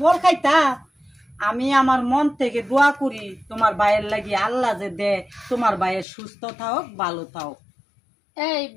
ফল খাইতা। আমি আমার মন থেকে দোয়া করি তোমার ভাইয়ের লাগি আল্লাহ যে দে তোমার ভাইয়ের সুস্থ থাক, ভালো থাক। এই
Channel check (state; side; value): drops out; right; at 6.1 s